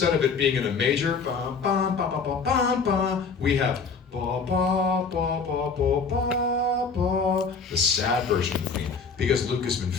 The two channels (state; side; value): quieter; right; 5.1 dB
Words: of it being in a major, ba, ba, ba, ba, ba, ba, ba, we have ba, ba, ba, ba, ba, ba, ba, the sad version of the theme, because Luke has been